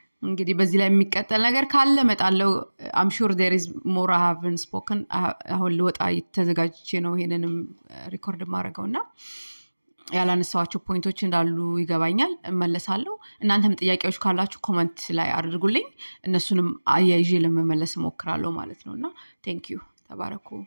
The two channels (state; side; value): inverted; both; correlation -1.00